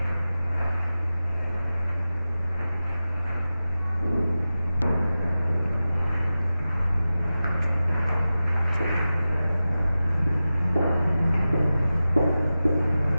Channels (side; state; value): both; inverted; correlation -0.94